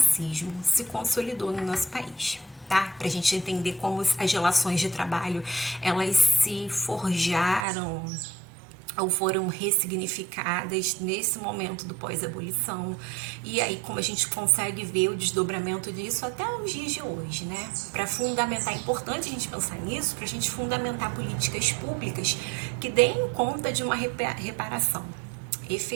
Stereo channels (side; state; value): left; drops out; at 7.7 s